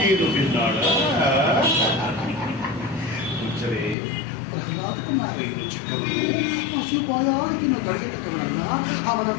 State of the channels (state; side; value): drops out; right; at 4.0 s